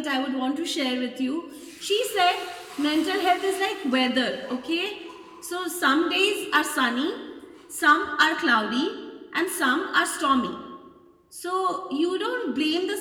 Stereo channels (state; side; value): identical; both; correlation 1.00